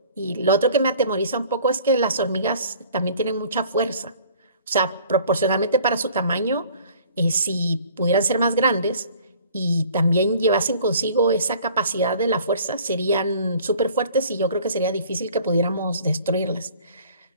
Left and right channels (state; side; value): inverted; both; correlation -0.51